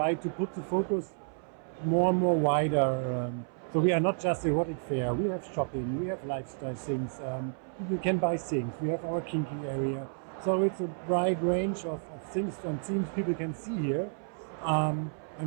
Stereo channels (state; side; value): silent; left; 57 dB below the other